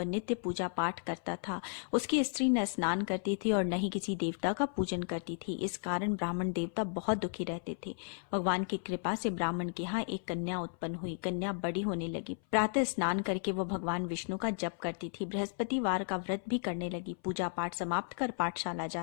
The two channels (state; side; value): silent; right; 55 dB below the other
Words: नित्य पूजा पाठ करता था। उसकी स्त्री न स्नान करती थी और न ही किसी देवता का पूजन करती थी। इस कारण ब्राह्मण देवता बहुत दुखी रहते थे। भगवान की कृपा से ब्राह्मण के यहाँ एक कन्या उत्पन्न हुई। कन्या बड़ी होने लगी। प्रातः स्नान करके वह भगवान विष्णु का जप करती थी। बृहस्पतिवार का व्रत भी करने लगी। पूजा पाठ समाप्त कर पाठशाला